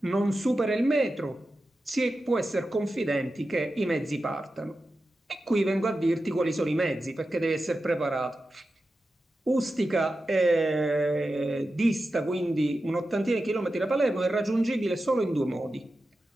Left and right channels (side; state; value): both; normal; correlation 0.92